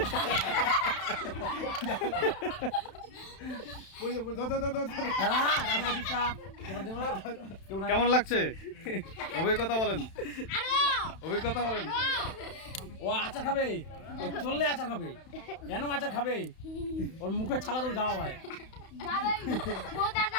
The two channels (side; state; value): right; late; 31 ms